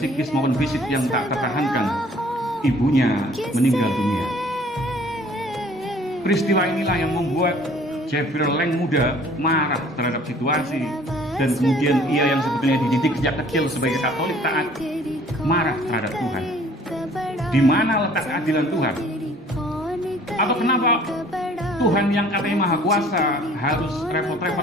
maupun fisik yang tak tertahankan, ibunya meninggal dunia. Peristiwa inilah yang membuat Jeffrey Lang muda marah terhadap situasi, dan kemudian ia yang sebetulnya dididik sejak kecil sebagai Katolik taat marah terhadap Tuhan. Di mana letak keadilan Tuhan? Atau kenapa Tuhan yang katanya Maha Kuasa harus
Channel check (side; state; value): both; normal; correlation 0.54